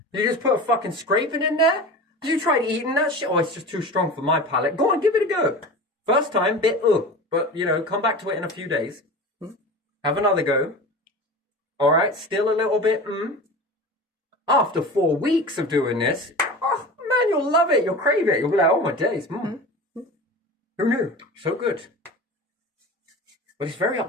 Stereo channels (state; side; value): normal; both; correlation 0.33